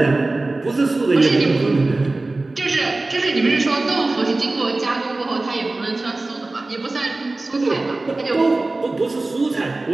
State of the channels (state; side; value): quieter; left; 3.1 dB